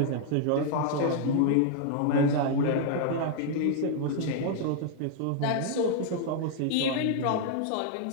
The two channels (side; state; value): both; different; correlation 0.00